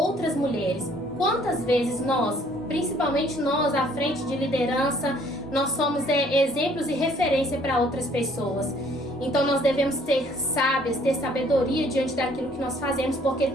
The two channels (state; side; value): normal; both; correlation 0.60